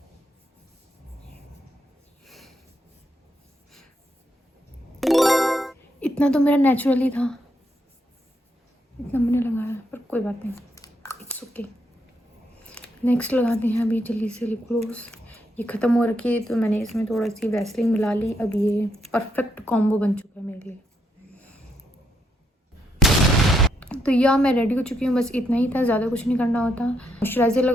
इतना तो मेरा नेचुरली था, इतना मैंने लगाया, पर कोई बात नहीं, इट्स ओके। नेक्स्ट लगाते हैं अभी जल्दी से लिप ग्लोस। ये ख़त्म हो रखी है तो मैंने इसमें थोड़ा सी वैसलीन मिला ली। अब ये परफेक्ट कॉम्बो बन चुका है मेरे लिए। तो या मैं रेडी हो चुकी हूँ, बस इतना ही था, ज़्यादा कुछ नहीं करना होता। मॉइस्चराइज़र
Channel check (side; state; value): both; normal; correlation 0.78